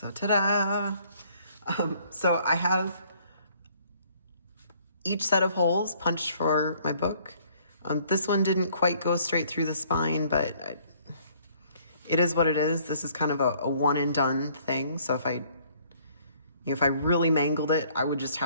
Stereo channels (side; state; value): both; inverted; correlation -0.61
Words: ta-da! So I have each set of holes punched for my book. This one didn't quite go straight through the spine, but it is what it is. This is kind of a one and done thing. So if I really mangled it, I would just